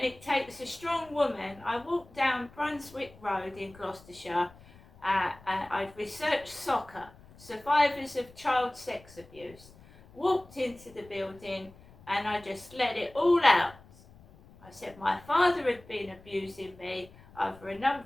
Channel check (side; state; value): left; noise; rumble, 23 dB below the sound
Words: it takes a strong woman. I walked down Brunswick Road in Gloucestershire, and I'd researched soccer, survivors of child sex abuse, walked into the building and I just let it all out. I said my father had been abusing me over a